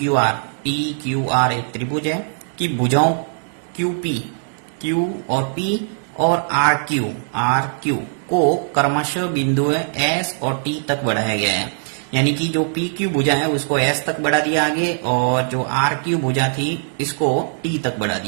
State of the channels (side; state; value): left; silent; digital silence